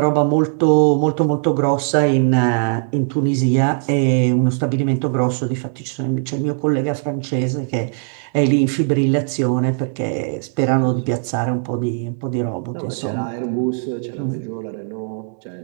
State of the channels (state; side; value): silent; left; digital silence